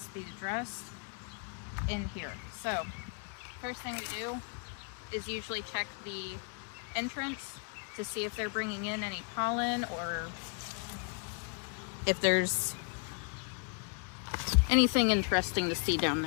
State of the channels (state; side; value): quieter; right; 37.1 dB